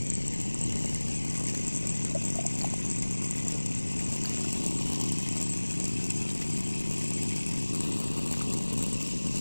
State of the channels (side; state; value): both; inverted; correlation -1.00